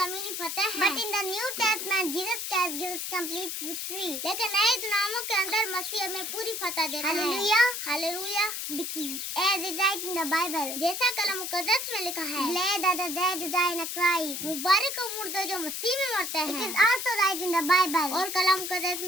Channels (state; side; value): noise; left; hiss, 4 dB below the sound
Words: फतेह है। But in the New Testament, Jesus Christ gives complete victory. लेकिन नए ड्रामों के अंदर मसीह हमें पूरी फतेह देता है। Hallelujah, Hallelujah. As it writes in the Bible, जैसा कलाम मुकद्दस में लिखा है, Glad are the dead who die in Christ. मुबारक हो मुर्दे जो मसीह में मरते हैं। It is also right in the Bible. और कलाम मुकद्दस